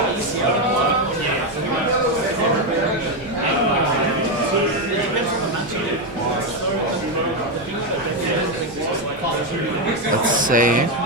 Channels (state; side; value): normal; both; correlation 0.07